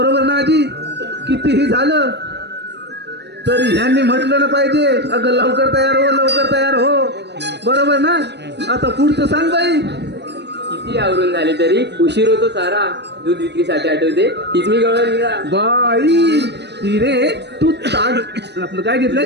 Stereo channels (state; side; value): late; left; 0.50 ms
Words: ना आजी? कितीही झालं तरी ह्यांनी म्हटलं ना पाहिजे, अगं लवकर तयार हो, लवकर तयार हो. बरोबर ना? आता पुढचं सांग बाई. किती आवरून झाली तरी उशीर होतो सारा. दूध विक्रीसाठी आठवते तीच मी गवळा निघा. बाई हिरे, तू ताट आपलं काय घेतलंय?